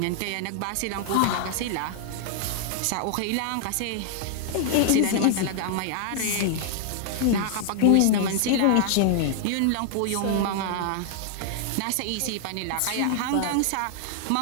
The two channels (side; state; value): both; different; correlation 0.00